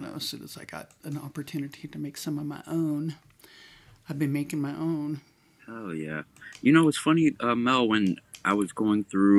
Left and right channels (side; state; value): both; identical; correlation 1.00